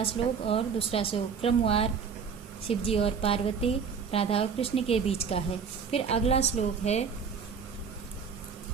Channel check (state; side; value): quieter; left; 6.2 dB